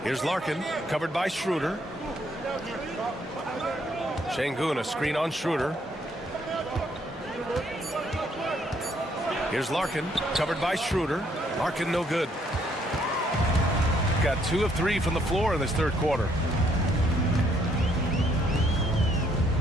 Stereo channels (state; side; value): normal; both; correlation 0.69